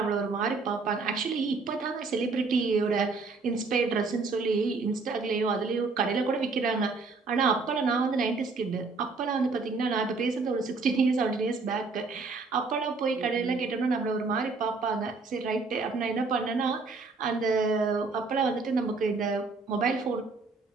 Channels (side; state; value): left; quieter; 4.1 dB